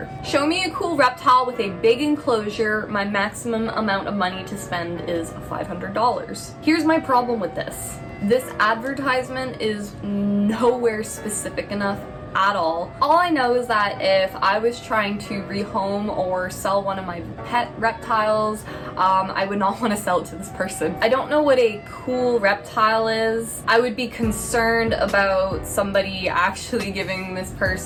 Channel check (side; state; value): both; identical; correlation 1.00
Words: Show me a cool reptile with a big enclosure. My maximum amount of money to spend is $500. Here's my problem with this. This advertisement is nowhere specific enough at all. All I know is that if I was trying to rehome or sell one of my pet reptiles, I would not want to sell it to this person. I don't know what a cool reptile is. I would be concerned about somebody actually giving this